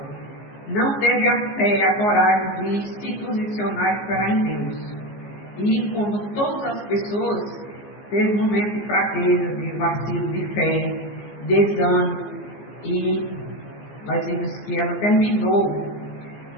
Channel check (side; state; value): right; late; 14 ms